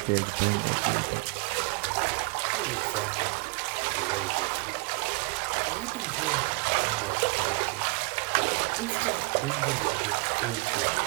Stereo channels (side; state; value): left; quieter; 29.3 dB